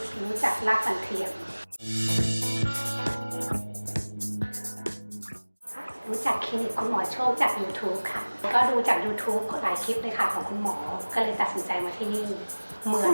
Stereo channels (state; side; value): inverted; both; correlation -1.00